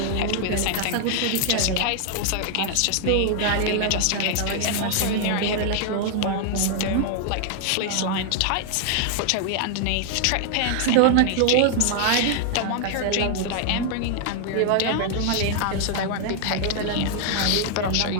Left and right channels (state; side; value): different; both; correlation 0.00